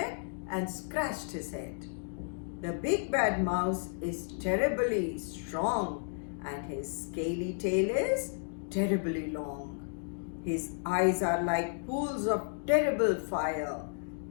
and scratched his head. The big bad mouse is terribly strong and his scaly tail is terribly long. His eyes are like pools of terrible fire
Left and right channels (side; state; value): right; silent; digital silence